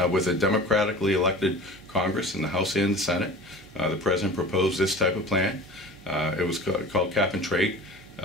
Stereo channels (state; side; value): noise; right; hum, 24 dB below the sound